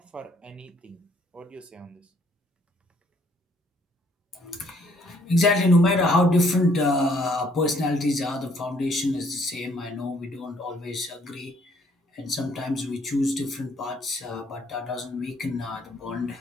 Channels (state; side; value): normal; both; correlation 0.65